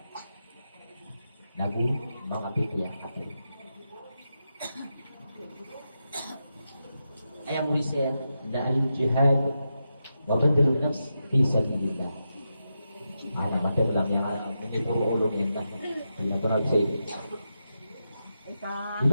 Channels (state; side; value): inverted; both; correlation -0.87